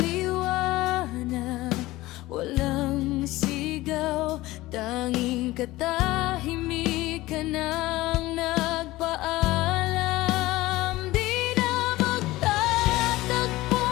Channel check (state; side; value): quieter; right; 18.3 dB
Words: walang sigaw, tanging katahimikan ang nagpaalam. Di na magtatagpo